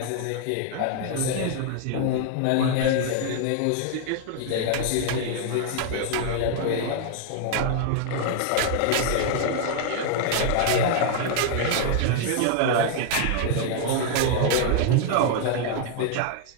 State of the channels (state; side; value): different; both; correlation 0.00